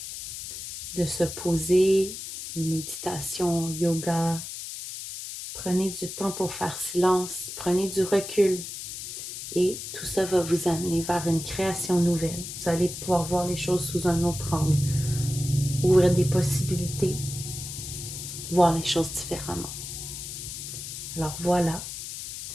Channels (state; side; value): noise; left; hiss, 8 dB below the sound